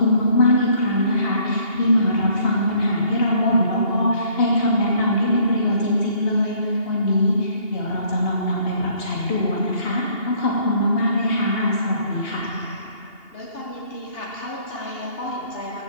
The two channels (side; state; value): right; late; 2.8 ms